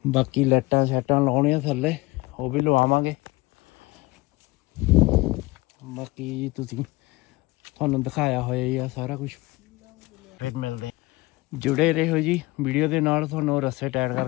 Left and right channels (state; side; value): quieter; right; 21.7 dB